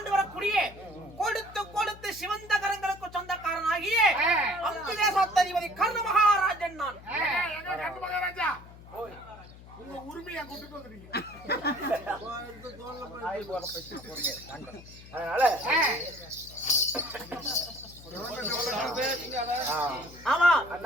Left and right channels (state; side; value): noise; left; hum, 18 dB below the sound